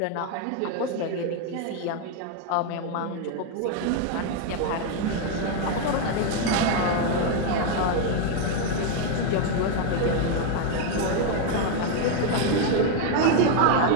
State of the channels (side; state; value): both; different; correlation 0.01